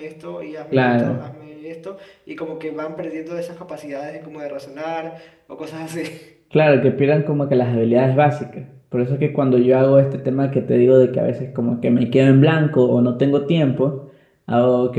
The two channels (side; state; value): both; identical; correlation 1.00